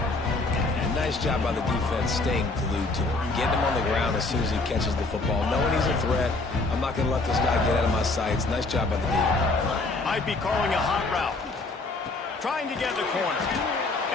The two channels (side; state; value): right; quieter; 3.3 dB